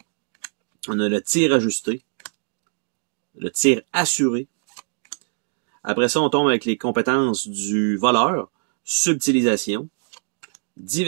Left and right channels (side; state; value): left; silent; digital silence